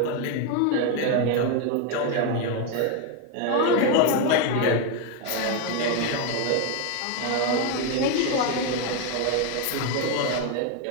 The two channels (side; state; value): both; different; correlation 0.01